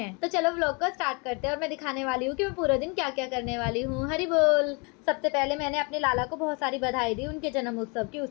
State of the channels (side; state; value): right; quieter; 31.9 dB